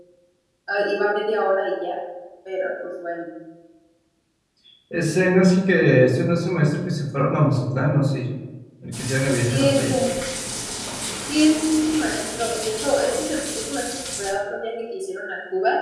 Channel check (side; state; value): both; identical; correlation 1.00